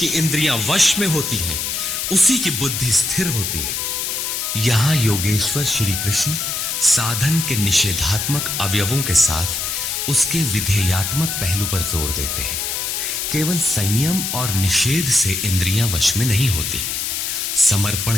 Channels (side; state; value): left; noise; hiss, 2 dB below the sound